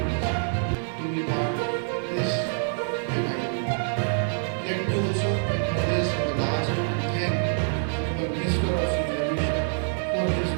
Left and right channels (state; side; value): silent; left; digital silence